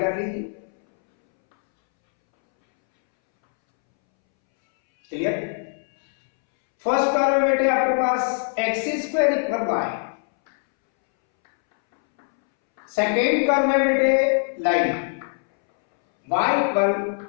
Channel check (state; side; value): silent; right; 64 dB below the other